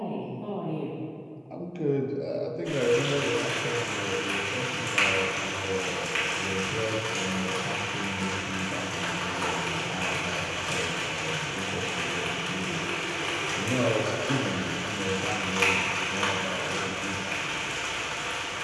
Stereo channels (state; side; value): identical; both; correlation 1.00